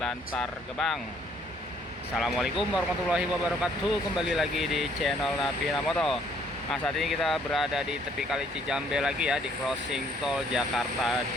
Gebang. Assalamualaikum warahmatullahi wabarakatuh. Kembali lagi di channel Napina Moto. Nah, saat ini kita berada di tepi Kali Cijambe lagi ya, di crossing tol Jakarta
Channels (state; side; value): normal; both; correlation 0.64